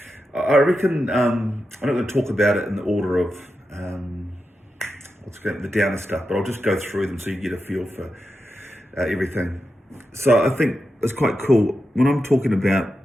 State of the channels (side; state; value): both; normal; correlation 0.89